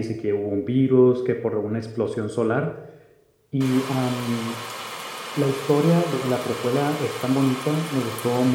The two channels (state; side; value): identical; both; correlation 1.00